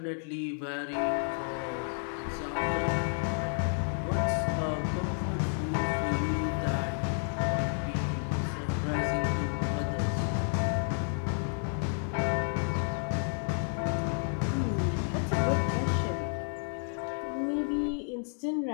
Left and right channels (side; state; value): right; silent; 57 dB below the other